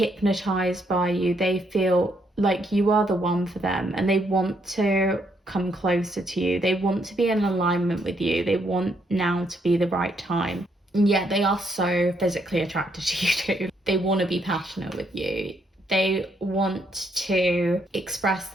by you. They feel like you are the one for them, and they want to come closer to you. They want to be in alignment with you. They want now to be the right time. And yet they are so physically attracted to you too. They want to be passionate with you. They want to express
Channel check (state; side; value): normal; both; correlation 0.74